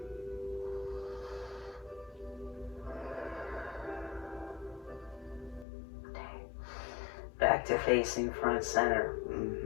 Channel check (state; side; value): drops out; right; at 5.7 s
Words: Back to facing front center.